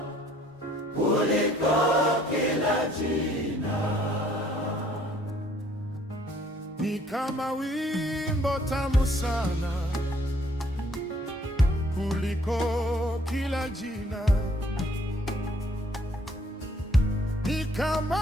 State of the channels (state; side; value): normal; both; correlation 0.61